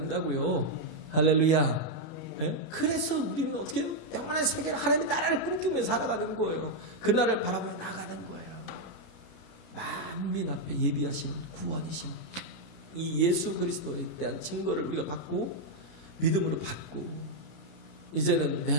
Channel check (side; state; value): right; late; 32 ms